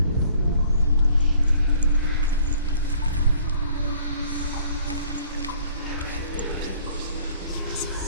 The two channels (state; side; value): inverted; both; correlation -0.57